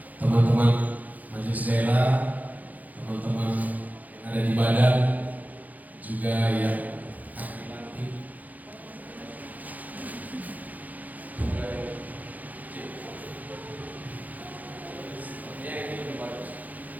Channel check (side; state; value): left; late; 0.080 ms